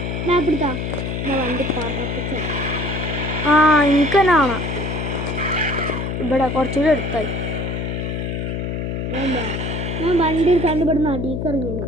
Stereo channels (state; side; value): noise; left; hum, 3 dB below the sound